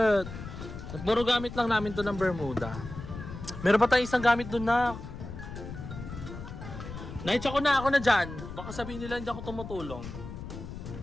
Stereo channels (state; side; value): noise; left; rumble, 10 dB below the sound